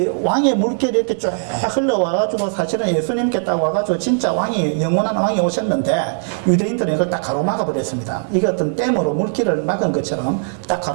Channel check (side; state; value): left; silent; digital silence